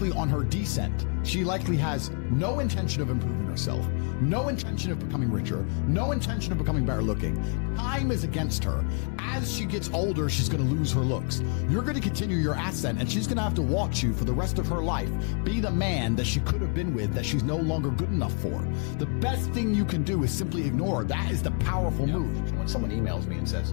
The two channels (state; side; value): quieter; right; 39.5 dB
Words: on her descent. She likely has no intention of improving herself, no intention of becoming richer, no intention of becoming better looking. Time is against her. As she gets older, she's going to lose her looks. You're going to continue your ascent, and she's going to have to watch you for the rest of her life be the man that she could have been with that she's no longer good enough for. The best thing you can do is simply ignore her. That is the powerful move. When someone emails me and